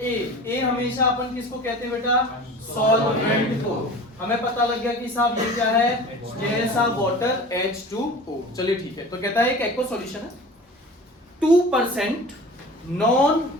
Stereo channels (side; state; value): both; normal; correlation 0.39